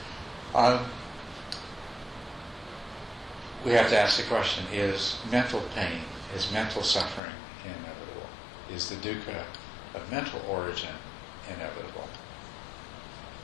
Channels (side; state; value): right; drops out; at 7.2 s